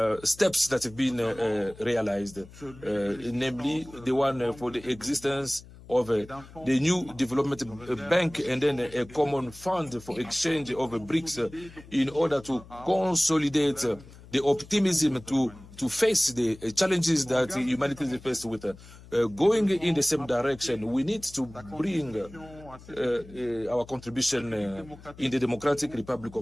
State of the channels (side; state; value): left; noise; hum, 20 dB below the sound